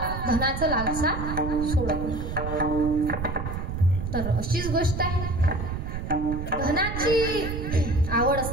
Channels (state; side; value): noise; right; rumble, 5 dB below the sound